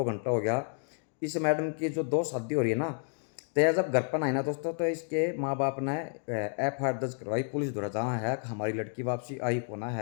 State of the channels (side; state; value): right; silent; 57 dB below the other